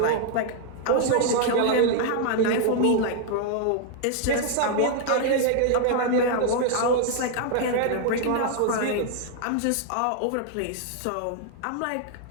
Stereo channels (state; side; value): different; both; correlation 0.00